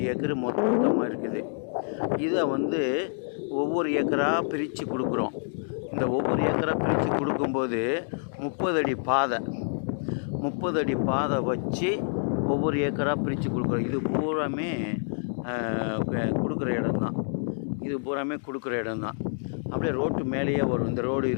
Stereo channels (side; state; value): right; silent; digital silence